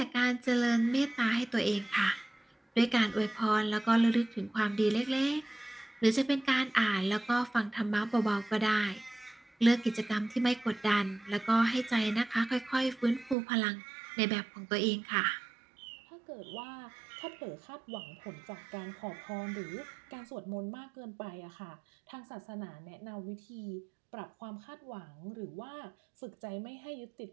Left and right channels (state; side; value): drops out; left; at 13.4 s